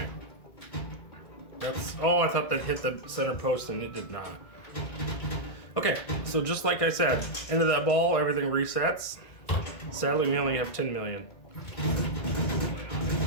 Oh, I thought that hit the center post and it did not. Okay, so just like I said, end of that ball, everything resets. Sadly, we only have 10 million.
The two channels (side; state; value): right; late; 1.6 ms